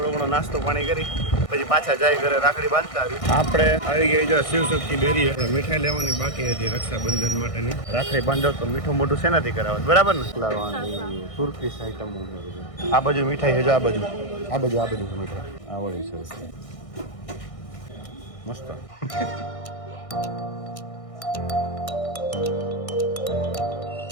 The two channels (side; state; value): right; late; 1.6 ms